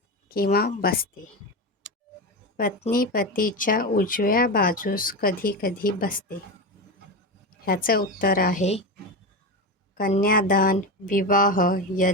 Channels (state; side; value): normal; both; correlation 0.19